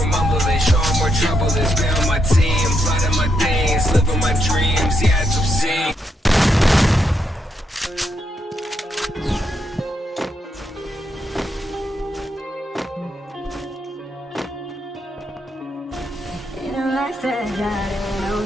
mumbling, show 'em where trouble is. Build my team, plot my things, live on my dreams, yeah, some sing. Life that got it goes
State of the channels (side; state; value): both; normal; correlation 0.80